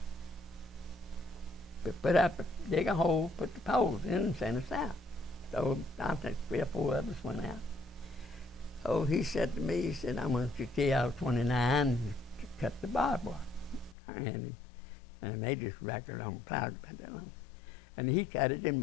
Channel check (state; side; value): drops out; right; at 14.0 s